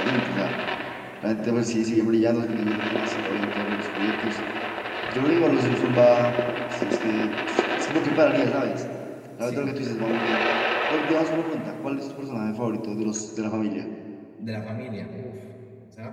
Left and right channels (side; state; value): both; identical; correlation 1.00